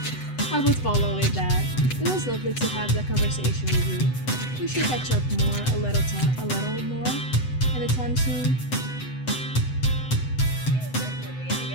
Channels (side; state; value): right; late; 7.9 ms